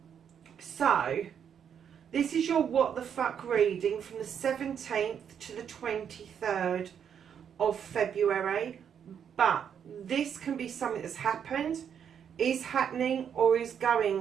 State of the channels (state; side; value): quieter; left; 8.1 dB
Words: So this is your what the fuck reading from the 17th to the 23rd of February. But this can be something that's happened, is happening, or is